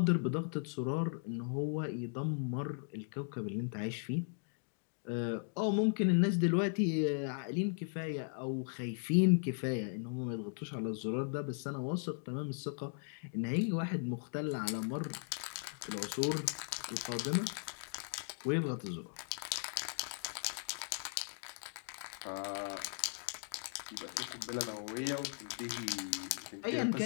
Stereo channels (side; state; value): right; silent; digital silence